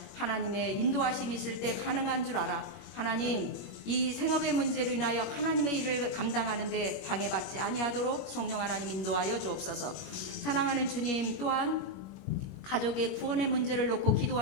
하나님의 인도하심이 있을 때 가능한 줄 알아. 하나님, 이 생업의 문제로 인하여 하나님의 일을 감당하는데 방해받지 아니하도록 성령 하나님 인도하여 주옵소서. 사랑하는 주님, 또한 가족의 구원의 문제를 놓고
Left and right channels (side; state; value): right; late; 21 ms